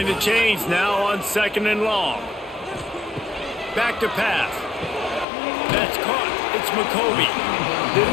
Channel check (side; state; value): right; drops out; at 5.2 s